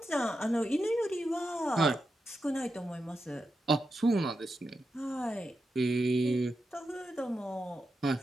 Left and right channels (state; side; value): normal; both; correlation 0.88